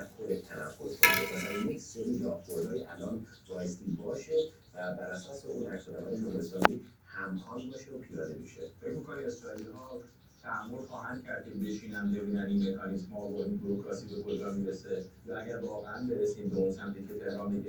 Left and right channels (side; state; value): both; identical; correlation 1.00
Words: تنفس کنه مثلا یک سری راهبردهای الان بایستی باشه و بر اساس اون عکس‌العمل جمهوری اسلامی همخوان باشه و پیاده میشه فکر می‌کنی اسرائیلی‌ها تحمل خواهند کرد که بشینن ببینن این مکانیزم‌ها و این بوروکراسی به کجا میرسه یا اگر واقعا برسیم به اون سمتی که تهران